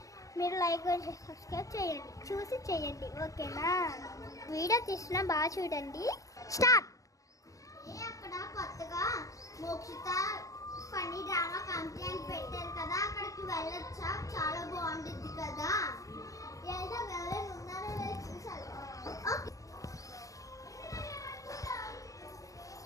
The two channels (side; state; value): right; late; 0.16 ms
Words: మీరు లైక్ చేసి సబ్స్క్రైబ్ చేయండి, చూసి చేయండి, ఓకేనా? వీడియో తీసిన బాగా చూడండి. స్టార్ట్. అక్కడ కొత్తగా మోక్షిత ఫన్నీ డ్రామా కంపెనీ అని పెట్టారు కదా, అక్కడికి వెళ్ళొచ్చా? చాలా బాగుంటుంది కదా. ఎవరైనా ఉన్నారో లేదో చూసారు.